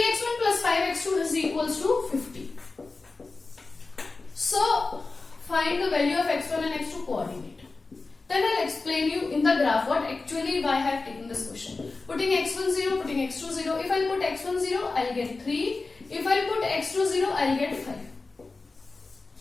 plus 5x2 is equals to 50. So find the value of x1 and x2 coordinate. Then I'll explain you in the graph what actually why I have taken this question. Putting x1 0, putting x2 0. If I put x1 0, I'll get 3. If I put x2 0, I'll get 5.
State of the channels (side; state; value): right; quieter; 3.7 dB